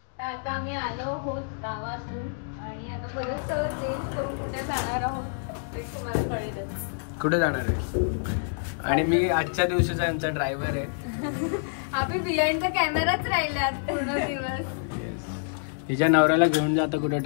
आम्ही आलो आहोत गावातून आणि आता परत सगळं चेंज करून कुठे जाणार आहोत ते तुम्हाला कळेलच. कुठे जाणार आहे? आणि मी आजच्या दिवशीचा आमचा ड्रायव्हर आहे. आम्ही बिहाइंड द कॅमेराच राहिले आज पूर्ण दिवस. येस. तिच्या नवऱ्याला घेऊन जाता कुठे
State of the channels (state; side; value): silent; right; digital silence